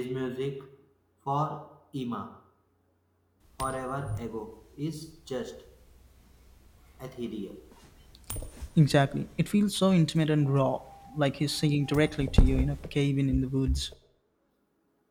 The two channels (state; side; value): identical; both; correlation 1.00